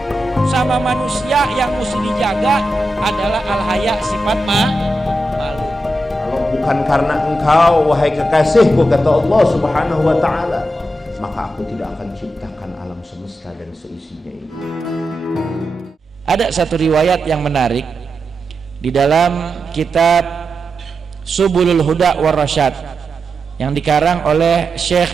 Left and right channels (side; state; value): both; normal; correlation 0.88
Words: Sama manusia yang mesti dijaga adalah al-haya, sifat malu. Kalau bukan karena engkau wahai kekasihku, kata Allah Subhanahu wa ta'ala, maka aku tidak akan ciptakan alam semesta dan seisinya ini. Ada satu riwayat yang menarik di dalam kitab Subulul Huda war Rasyad yang dikarang oleh